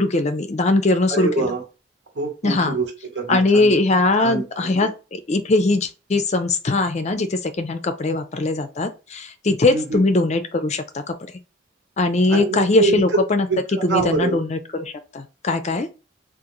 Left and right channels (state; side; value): normal; both; correlation 0.43